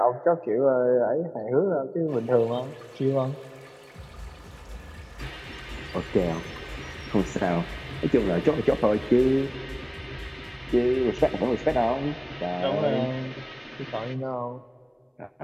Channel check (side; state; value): both; identical; correlation 1.00